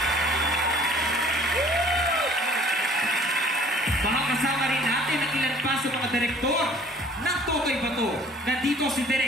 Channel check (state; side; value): normal; both; correlation 0.53